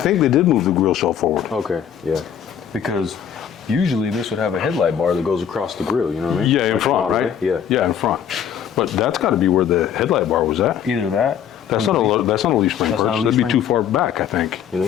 they did move the grill shell forward. Okay, yeah. Because usually this would have a headlight bar that goes across the grill, you know what I mean? Yeah, in Like front, Model right? A. Yeah. Yeah, in front. But that's got to be where the headlight bar was at. Either that. That's not a leaf spring That's not a purchase. leaf That'd be spring? too far back, I think. You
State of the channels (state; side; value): quieter; right; 8.9 dB